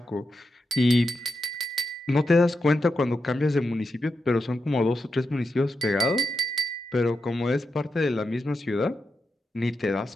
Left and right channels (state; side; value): normal; both; correlation 0.86